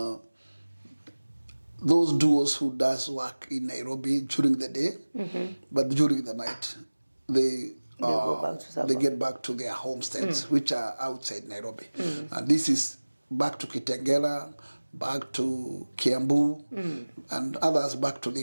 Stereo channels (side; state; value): both; inverted; correlation -1.00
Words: those duos who does work in Nairobi during the day, but during the night they get back to their homesteads, which are outside Nairobi. And this is back to Kitengela, back to Kiambu, and others back to